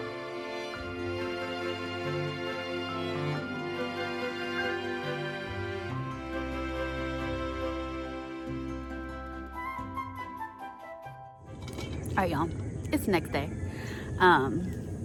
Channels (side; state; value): both; identical; correlation 1.00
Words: All right, y'all. It's the next day.